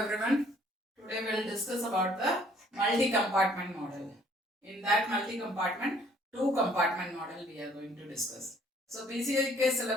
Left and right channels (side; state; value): both; normal; correlation 0.60